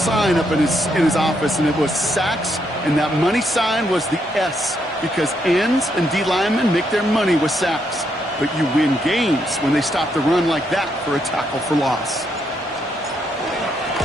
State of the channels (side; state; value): both; normal; correlation 0.77